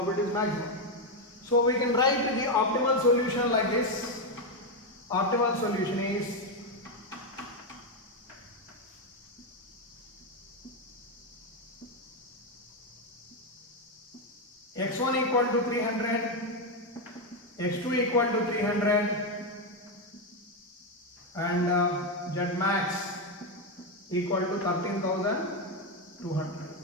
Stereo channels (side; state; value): both; normal; correlation 0.06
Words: is maximum. So, we can write the optimal solution like this. Optimal solution is x1 equal to 300, x2 equal to 300, and Z max equal to 13,200.